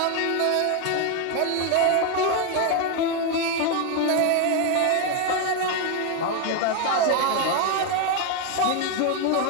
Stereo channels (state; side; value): different; both; correlation 0.01